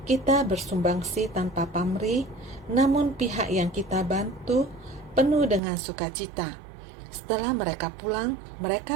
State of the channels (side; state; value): left; drops out; at 5.6 s